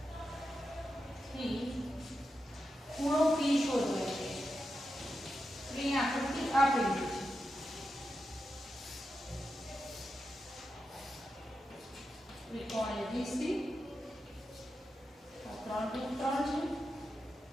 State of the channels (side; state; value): both; normal; correlation 0.88